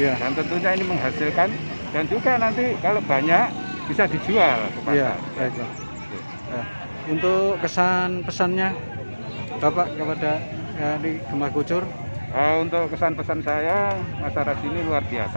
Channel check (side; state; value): both; inverted; correlation -1.00